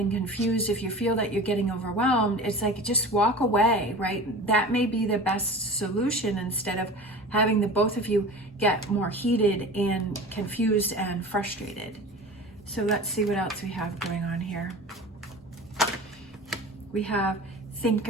confused, if you feel that you're getting overwhelmed, it's like, just walk away, right? That may be the best solution, instead of having the both of you get more heated and confused and frustrated. So let's see what else we have going on here. We have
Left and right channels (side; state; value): both; normal; correlation 0.36